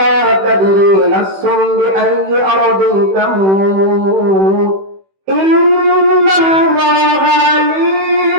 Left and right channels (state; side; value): late; left; 16 ms